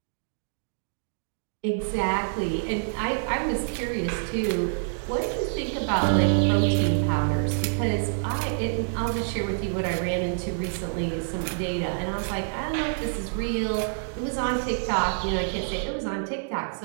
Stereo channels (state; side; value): silent; left; digital silence